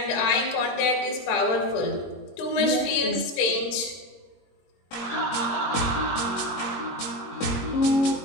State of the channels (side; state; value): right; late; 22 ms